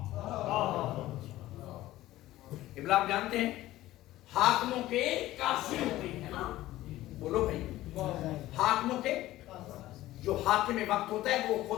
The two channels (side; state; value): right; quieter; 15.8 dB